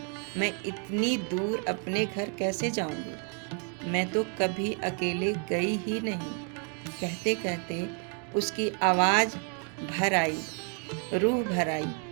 मैं इतनी दूर अपने घर कैसे जाऊंगी? मैं तो कभी अकेले गई ही नहीं। कहते कहते उसकी आवाज़ भर आई, रूह भर आई।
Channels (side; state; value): left; quieter; 39.6 dB